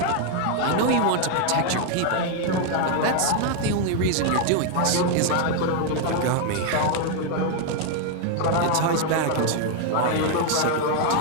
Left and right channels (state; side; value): different; both; correlation 0.01